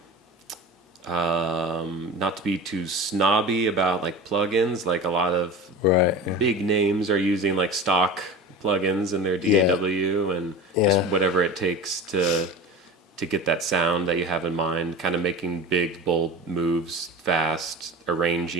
not to be too snobby about like plugins, like a lot of big names are using like stock plugins in their DAW and just whatever it takes to get that sound that you have in mind, kind of making big, bold moves fast,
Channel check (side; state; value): both; normal; correlation 0.32